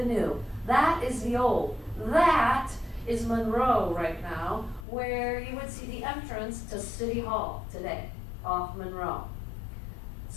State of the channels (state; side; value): drops out; right; at 4.9 s